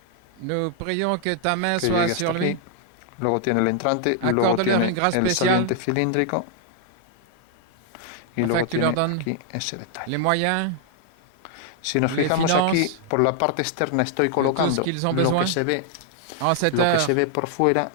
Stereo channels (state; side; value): different; both; correlation 0.00